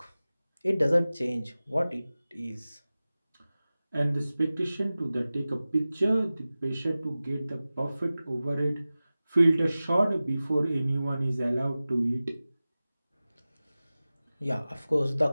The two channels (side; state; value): both; inverted; correlation -0.96